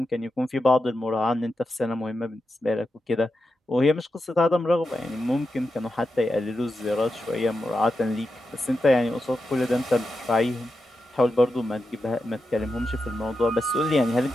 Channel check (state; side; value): normal; both; correlation 0.88